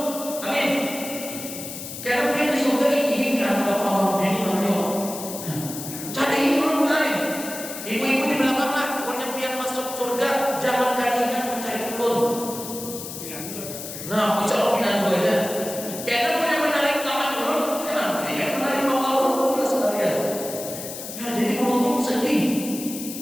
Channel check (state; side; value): noise; left; hiss, 9 dB below the sound